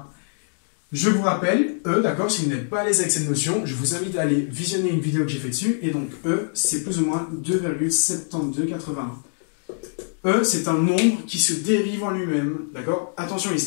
Je vous rappelle, e, d'accord, si vous n'êtes pas à l'aise avec cette notion, je vous invite à aller visionner une vidéo que j'ai fait dessus, et donc e, c'est plus ou moins 2,7281. E, c'est un nombre qui se dérive en lui-même, d'accord? Attention, il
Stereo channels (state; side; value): silent; right; digital silence